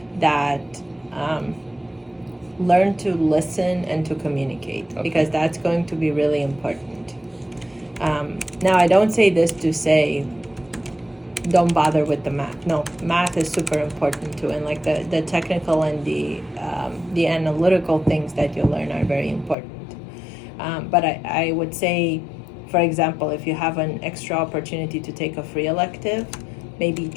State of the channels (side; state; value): right; drops out; at 19.6 s